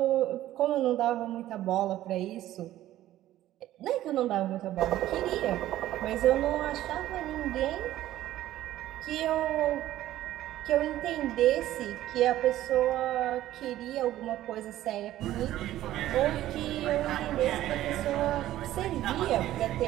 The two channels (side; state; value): left; quieter; 13.9 dB